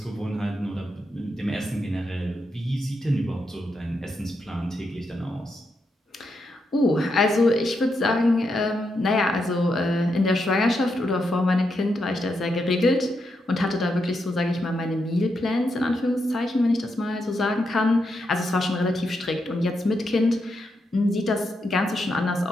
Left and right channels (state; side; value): normal; both; correlation 0.83